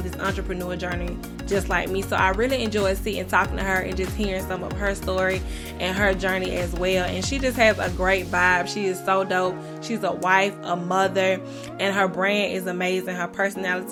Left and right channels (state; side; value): identical; both; correlation 1.00